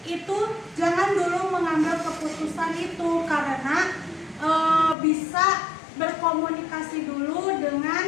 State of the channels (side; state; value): right; drops out; at 5.0 s